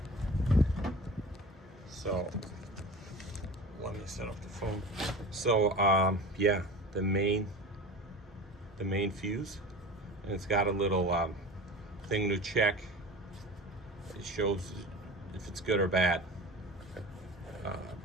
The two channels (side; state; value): both; normal; correlation 0.35